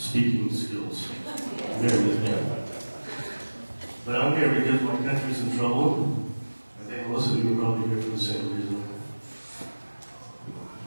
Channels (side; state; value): both; inverted; correlation -1.00